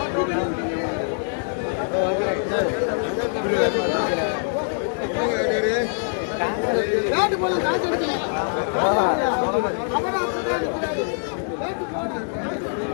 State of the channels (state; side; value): silent; right; 63 dB below the other